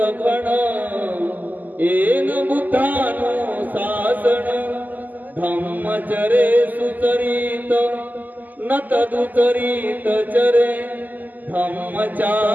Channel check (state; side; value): late; left; 0.083 ms